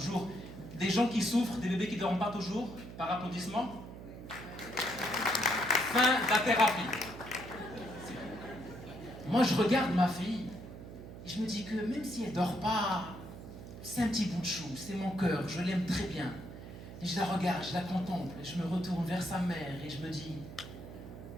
Des gens qui souffrent, des bébés qui dorment pas toujours, par applaudissement. Fin de la thérapie. Moi, je regarde ma fille, et je me dis que même si elle dort pas, c'est un petit bout de chou, c'est mon cœur, je l'aime très bien. Et je la regarde, je la contemple, et je me retourne vers sa mère, et je me dis...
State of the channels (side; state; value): right; noise; hum, 12 dB below the sound